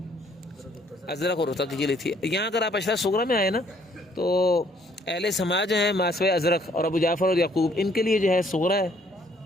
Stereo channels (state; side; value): normal; both; correlation 0.64